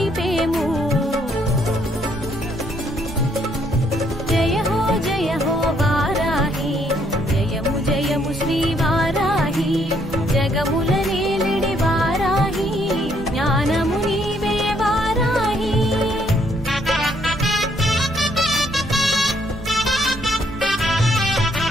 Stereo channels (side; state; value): right; noise; rumble, 15 dB below the sound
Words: జయ హో వారాహి జయము జయము శ్రీ వారాహి జగముల నేలిడి వారాహి జ్ఞానము నీవే వారాహి